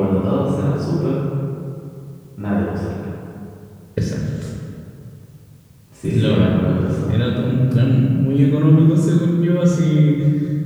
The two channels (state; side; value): identical; both; correlation 1.00